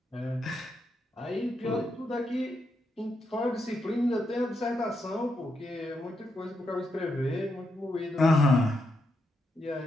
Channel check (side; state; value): both; normal; correlation 0.82